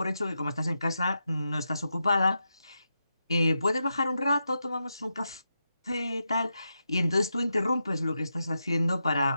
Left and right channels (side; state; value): both; inverted; correlation -0.87